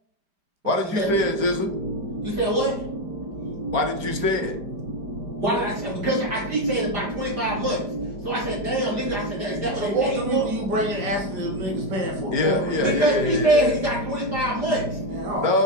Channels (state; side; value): late; left; 5.0 ms